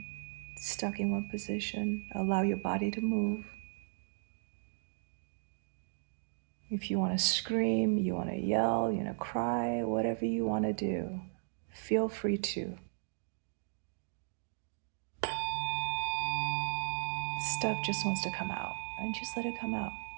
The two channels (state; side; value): silent; left; digital silence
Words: stuck in one position. Allow your body to move. If you want to scream, you want to yell, you want to cry, whatever you want to do, feel free to. Stuff just wants to come out, and just let it come out.